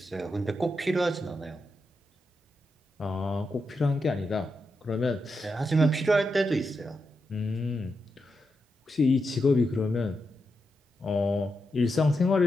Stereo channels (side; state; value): both; normal; correlation 0.86